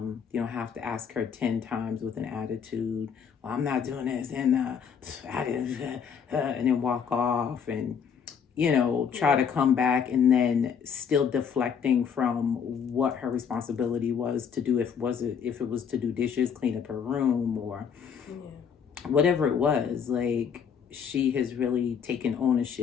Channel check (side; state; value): right; quieter; 7.1 dB